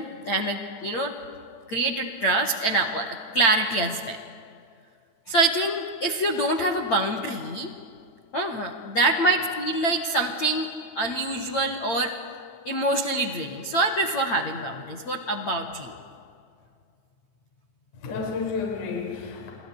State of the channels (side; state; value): right; late; 8.9 ms